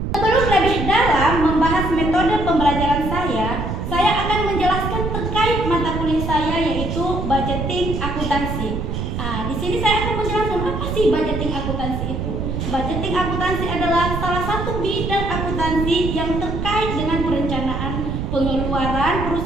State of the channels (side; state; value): right; noise; rumble, 3 dB below the sound